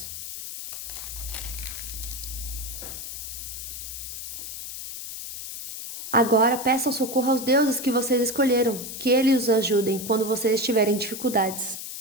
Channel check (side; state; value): left; noise; hiss, 8 dB below the sound